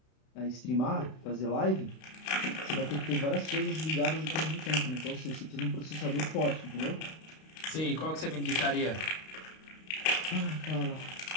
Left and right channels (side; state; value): right; late; 32 ms